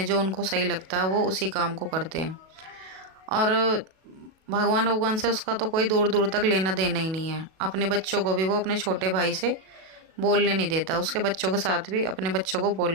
जो उनको सही लगता है वो उसी काम को करते हैं। और भगवान से उसका तो कोई दूर दूर तक लेना देना ही नहीं है। अपने बच्चों को भी वो अपने छोटे भाई से बोलने नहीं देता, उसके बच्चों के साथ भी अपने बच्चों को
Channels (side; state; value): left; late; 37 ms